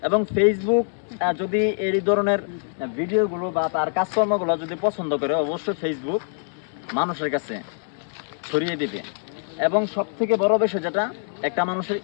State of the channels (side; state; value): right; silent; digital silence